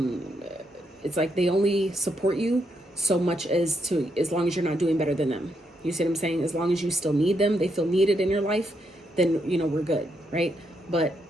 it's like they only support you so much as long as you're not doing better than them. You see what I'm saying? As long as you still need them, they feel needed in your life, then, you know, we're good, right? But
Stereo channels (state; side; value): normal; both; correlation 0.79